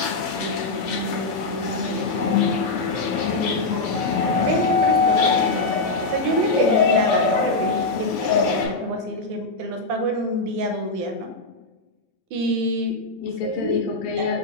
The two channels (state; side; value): quieter; right; 3.2 dB